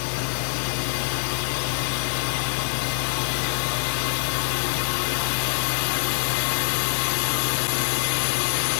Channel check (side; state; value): right; silent; digital silence